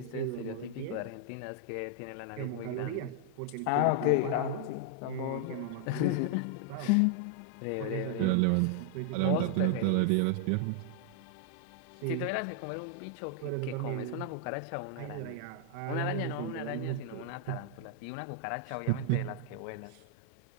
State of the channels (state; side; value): different; both; correlation -0.01